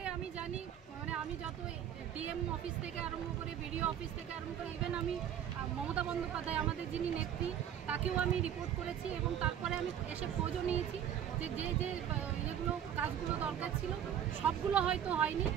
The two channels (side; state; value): left; quieter; 9.7 dB